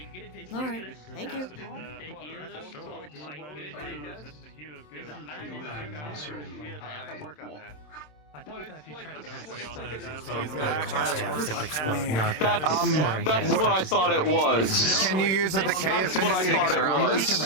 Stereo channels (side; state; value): right; late; 27 ms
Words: All right. Thank you. Work on that. I thought that if you tried to cast a spell using soul chaos, it would explode, not That's what I thought it was. Can you use a decay affinity to get around